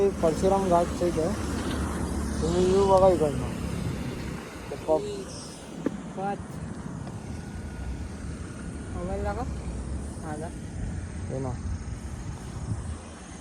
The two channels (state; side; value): identical; both; correlation 1.00